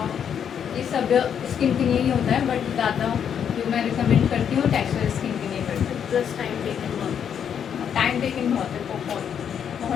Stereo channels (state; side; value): quieter; right; 8.2 dB